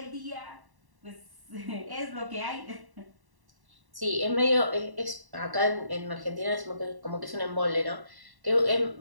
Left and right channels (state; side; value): late; left; 1.1 ms